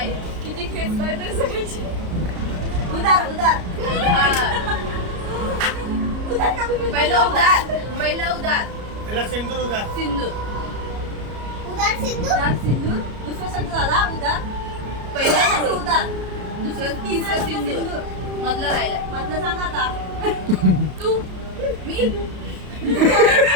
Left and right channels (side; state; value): left; late; 33 ms